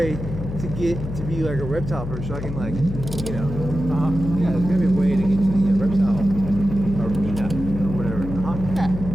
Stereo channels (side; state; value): left; noise; hum, 7 dB below the sound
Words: to get to be like a reptile person so I can yeah, there's gotta be a way to get to the reptile arena or whatever. Yeah,